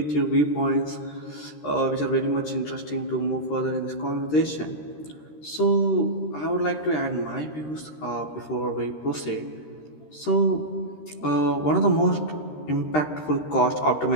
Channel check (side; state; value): right; late; 13 ms